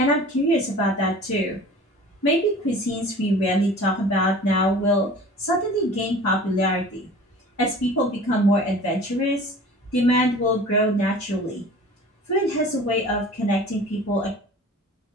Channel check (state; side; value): normal; both; correlation 0.43